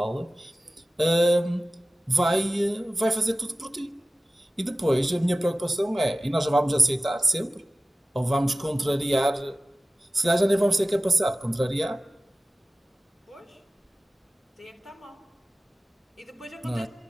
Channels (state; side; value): normal; both; correlation 0.96